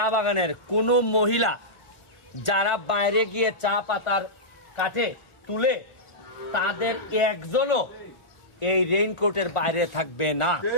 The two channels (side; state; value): right; late; 1.4 ms